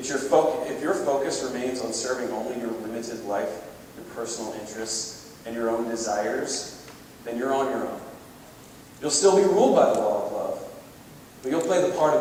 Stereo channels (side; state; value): both; identical; correlation 1.00